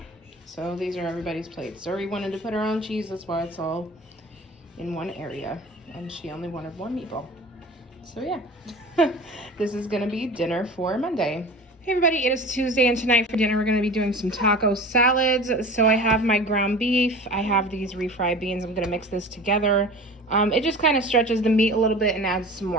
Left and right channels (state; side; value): normal; both; correlation 0.37